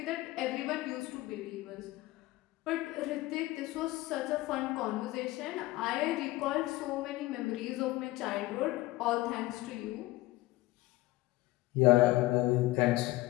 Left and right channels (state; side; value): quieter; right; 18.6 dB